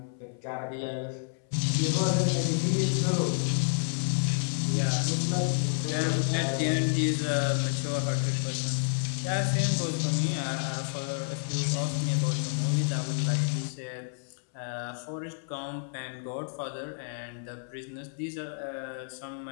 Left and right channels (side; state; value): right; silent; 58 dB below the other